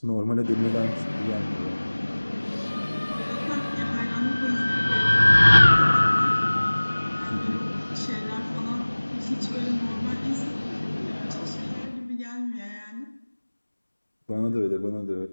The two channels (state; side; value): inverted; both; correlation -1.00